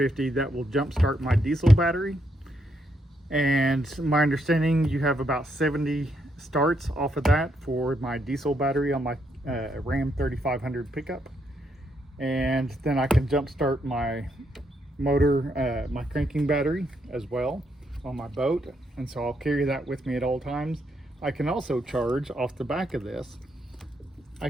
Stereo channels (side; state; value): both; normal; correlation 0.77